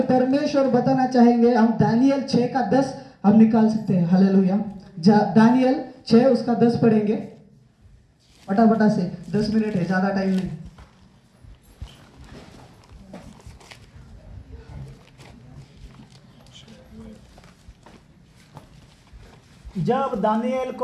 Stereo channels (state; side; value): identical; both; correlation 1.00